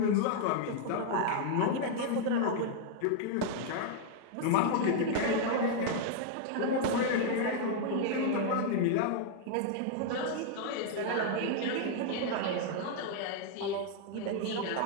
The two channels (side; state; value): both; different; correlation 0.00